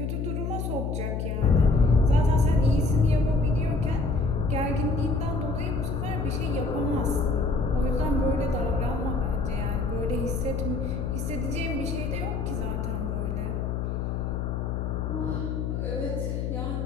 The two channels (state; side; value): noise; left; hum, 2 dB below the sound